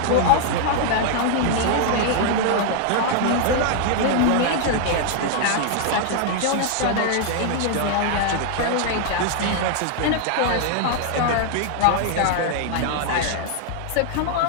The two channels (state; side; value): different; both; correlation 0.00